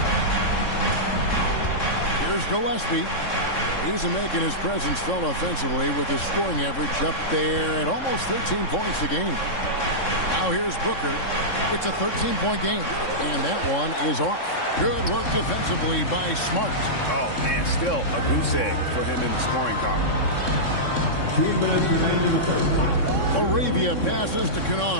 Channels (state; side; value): late; right; 3.6 ms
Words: Here's Gillespie. He's making his presence felt offensively with his scoring average up there at almost 13 points a game. Now here's Booker. It's a 13-point game, and that one is off. Good work defensively by Smart. Oh, man, still a goose egg for him in the scoring column. 2 minutes remaining in the first. Arabia passes to